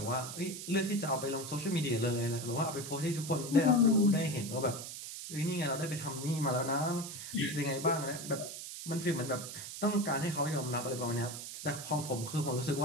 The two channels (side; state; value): right; noise; hiss, 9 dB below the sound